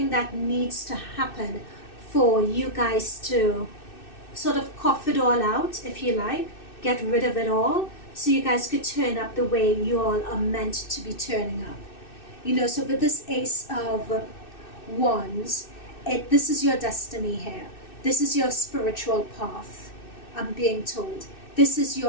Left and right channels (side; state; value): right; late; 2.6 ms